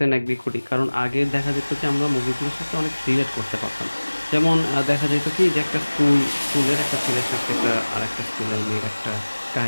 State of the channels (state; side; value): inverted; both; correlation -1.00